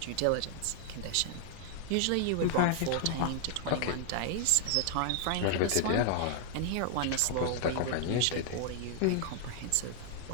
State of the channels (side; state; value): both; different; correlation 0.00